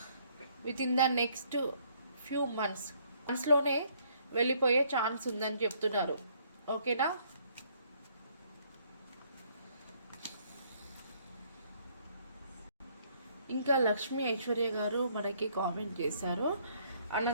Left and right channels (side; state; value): both; inverted; correlation -0.65